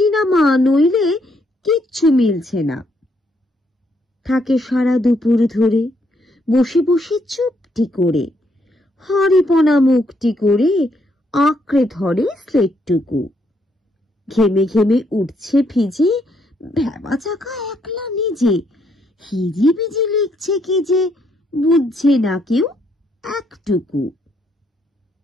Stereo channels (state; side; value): normal; both; correlation 0.73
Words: নামা, নইলে কিচ্ছু মিলছে না। থাকে সারা দুপুর ধরে বসে বসে চুপটি করে, হাঁড়িপনা মুখটি করে আঁকড়ে ধরে স্লেটটুকু। ঘেমে ঘেমে উঠছে ভিজে, ভেবা চাকা একলা নিজে। হিজি বিজি লিখছে কি যে, বুঝছে না কেউ একটুকু।